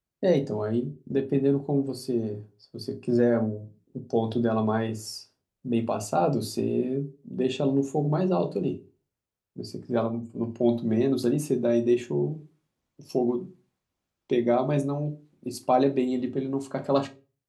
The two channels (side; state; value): both; identical; correlation 1.00